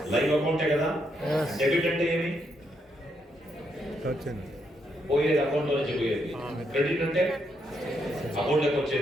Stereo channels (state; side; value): normal; both; correlation 0.78